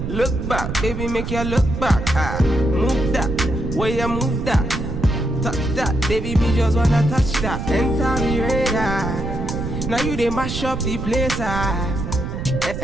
Look back, baby make you look back. I move that, where you move that. Touch that, baby me just wanna touch that. Enter me radar. Now you they mash up the place.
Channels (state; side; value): noise; right; rumble, 5 dB below the sound